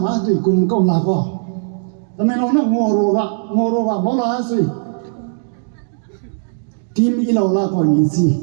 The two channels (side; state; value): left; silent; digital silence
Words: hatui kum ko la ko ta me lo na ngoro ga mo la sui team i lo la ko ni si